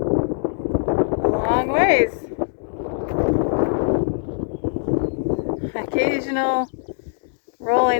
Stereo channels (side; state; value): right; silent; digital silence